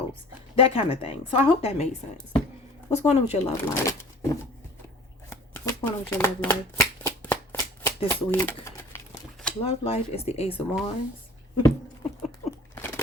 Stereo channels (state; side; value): normal; both; correlation 0.45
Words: That kind of thing. So I hope that made sense. What's going on with your love life? What's going on with your love life this week? Love life is the Ace of Wands.